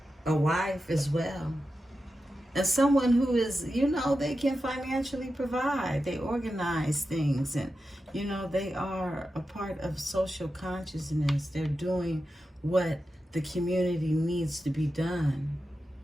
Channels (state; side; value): normal; both; correlation 0.91